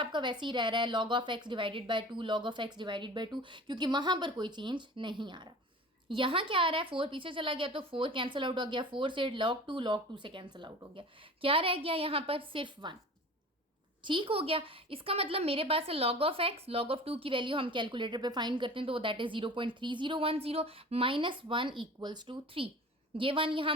वैसे ही रह रहा है log of x divided bye 2 log of x divided bye 2, क्योंकि वहां पर कोई चेंज नहीं आ रहा। यहाँ क्या आ रहा है? 4 पीछे चला गया तो 4 कैंसिल आउट हो गया। 4 से log 2 से कैंसिल आउट हो गया। क्या रह गया यहाँ पर? सिर्फ 1। ठीक हो गया। इसका मतलब मेरे पास है log of x, log of 2 की वैल्यू हम कैलकुलेटर पे फाइंड करते हैं तो that is 0.3010 minus 1 equals to 3। ये 1 यहाँ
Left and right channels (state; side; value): normal; both; correlation 0.39